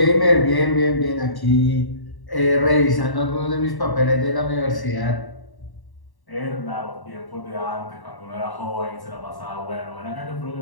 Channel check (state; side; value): late; right; 1.1 ms